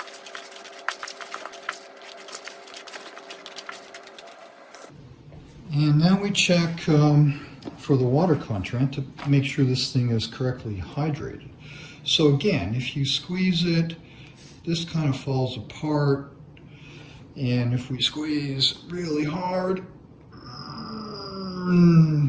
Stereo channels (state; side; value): identical; both; correlation 1.00